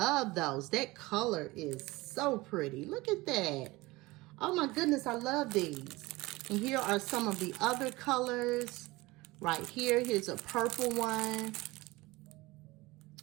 those. That color is so pretty. Look at that. Oh my goodness, I love these. And here are some of the other colors. Right here, here's a purple one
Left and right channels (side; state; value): left; quieter; 21.2 dB